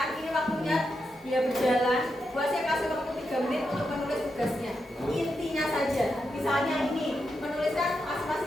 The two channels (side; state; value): both; normal; correlation 0.85